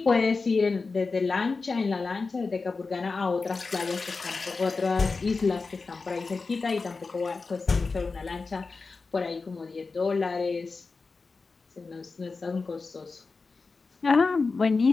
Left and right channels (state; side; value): quieter; right; 4.2 dB